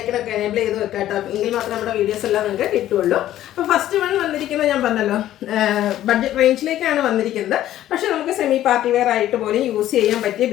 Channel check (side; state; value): right; quieter; 12.9 dB